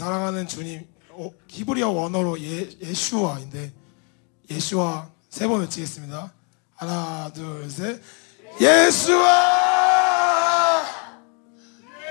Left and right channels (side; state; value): right; quieter; 35.7 dB